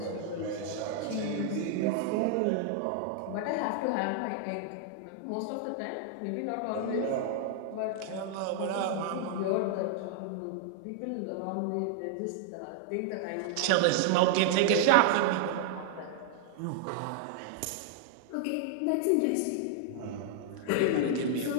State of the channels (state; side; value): different; both; correlation 0.00